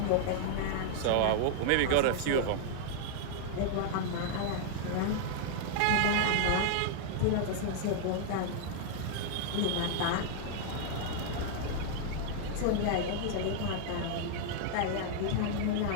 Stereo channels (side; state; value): both; different; correlation 0.00